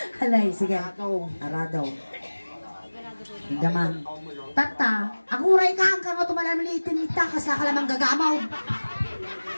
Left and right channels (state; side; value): inverted; both; correlation -1.00